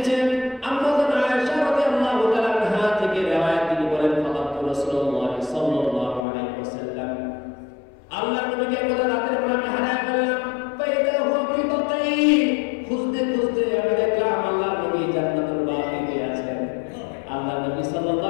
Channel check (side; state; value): right; drops out; at 6.2 s